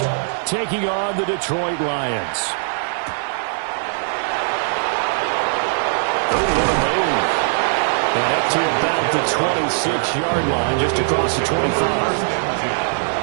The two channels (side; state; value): left; silent; digital silence